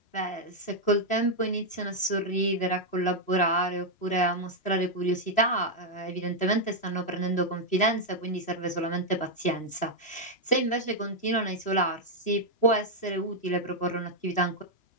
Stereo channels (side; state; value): right; late; 3.0 ms